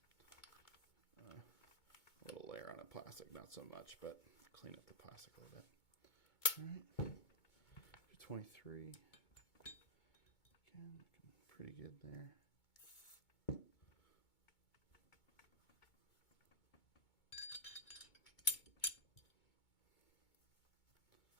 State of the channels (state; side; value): late; right; 2.2 ms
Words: a little layer on the plastic. Not so much, but clean up the plastic a little bit. All right. 23. Again, looking pretty good there.